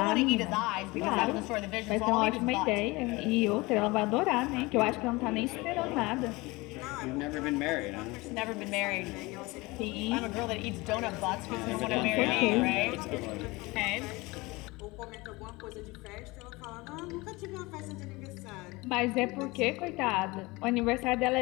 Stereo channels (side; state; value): right; quieter; 23.1 dB